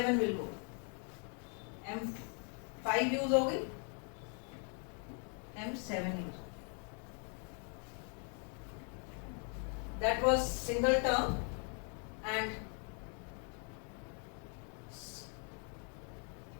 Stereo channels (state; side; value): quieter; right; 39.8 dB